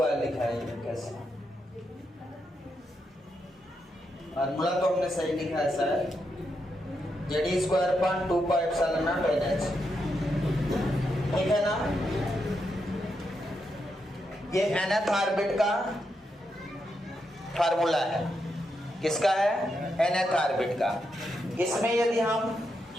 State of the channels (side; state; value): both; normal; correlation 0.83